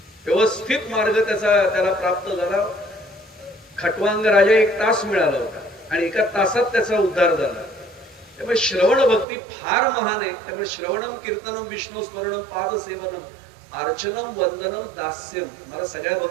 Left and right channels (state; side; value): drops out; left; at 9.2 s